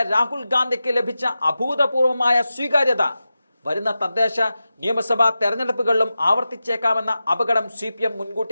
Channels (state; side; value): inverted; both; correlation -0.93